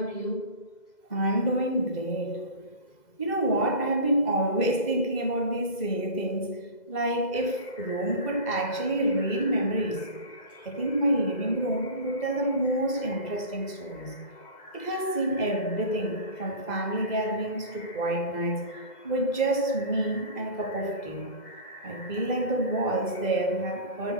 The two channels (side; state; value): right; late; 2.0 ms